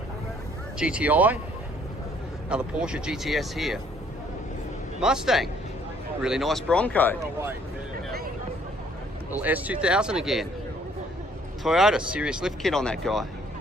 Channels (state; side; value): normal; both; correlation 0.62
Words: GTI, another Porsche GTS here. Mustang, really nice Bronco. Little S2000 again. Toyota, serious lift kit on that guy.